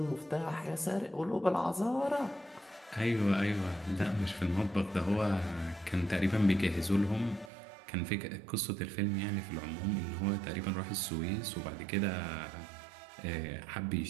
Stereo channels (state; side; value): drops out; left; at 7.5 s